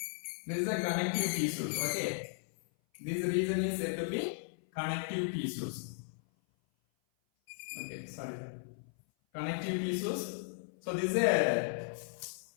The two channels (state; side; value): silent; right; 54 dB below the other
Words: this is a connective tissues. Okay, this region is said to be connective tissues. Okay, sorry, connective tissues. So this is a